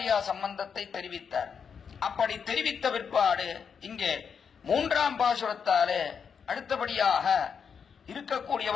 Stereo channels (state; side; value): quieter; right; 6.6 dB